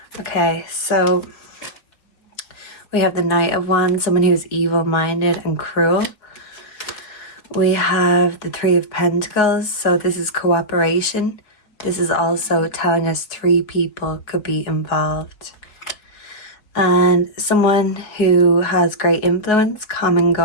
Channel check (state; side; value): late; right; 4.7 ms